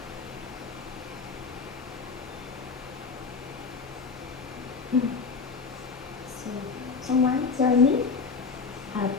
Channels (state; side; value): quieter; right; 4.9 dB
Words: So, someone tell me?